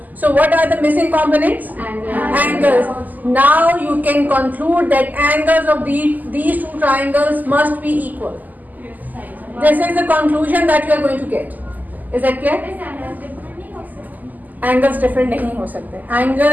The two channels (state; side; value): late; left; 0.082 ms